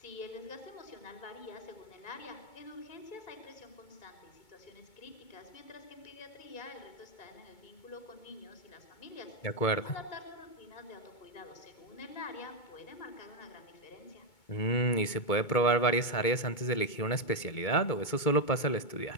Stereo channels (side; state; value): right; late; 2.2 ms